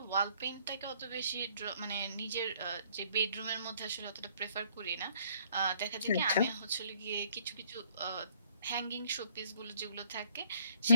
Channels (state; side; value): inverted; both; correlation -0.62